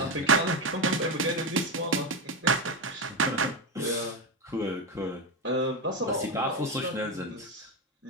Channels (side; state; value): both; normal; correlation 0.13